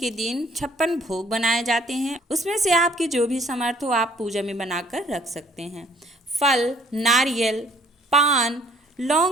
दिन 56 भोग बनाए जाते हैं, उसमें से आपके जो भी समर्थ हो आप पूजा में बनाकर रख सकते हैं। फल, नारियल, पान,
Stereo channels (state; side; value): normal; both; correlation 0.59